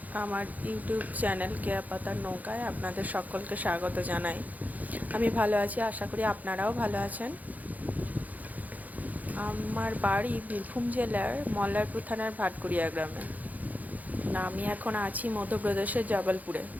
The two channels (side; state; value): left; late; 0.079 ms